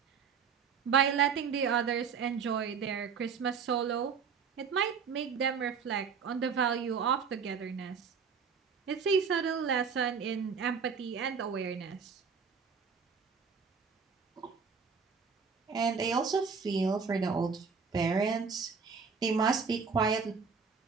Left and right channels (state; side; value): quieter; left; 6.0 dB